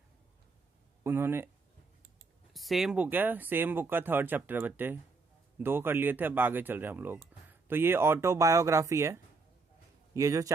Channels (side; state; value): left; quieter; 4.1 dB